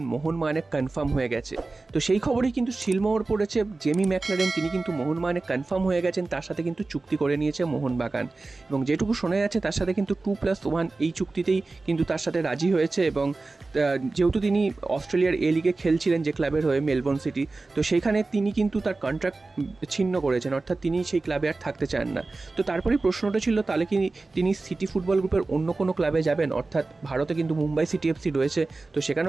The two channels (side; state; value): left; quieter; 3.5 dB